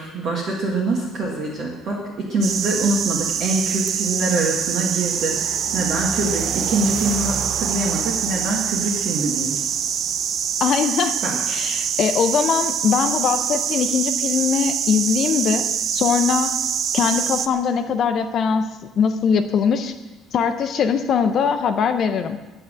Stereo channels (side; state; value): both; normal; correlation 0.60